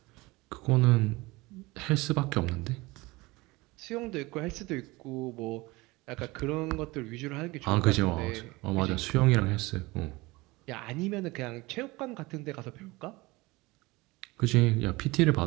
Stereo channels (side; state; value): left; quieter; 22.3 dB